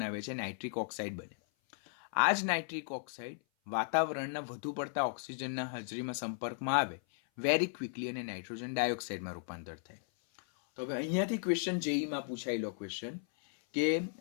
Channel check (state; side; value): silent; right; 54 dB below the other